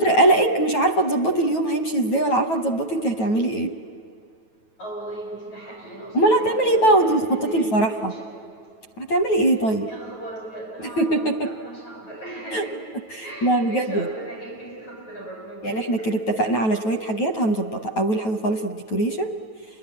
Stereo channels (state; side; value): late; right; 9.2 ms